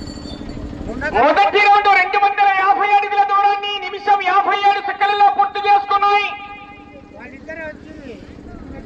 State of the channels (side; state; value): both; identical; correlation 1.00